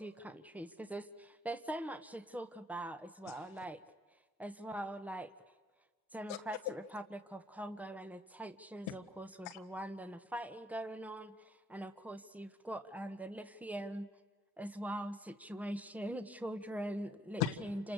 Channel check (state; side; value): normal; both; correlation 0.68